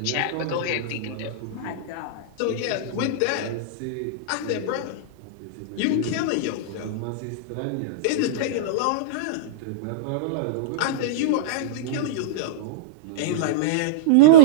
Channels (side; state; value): both; different; correlation -0.04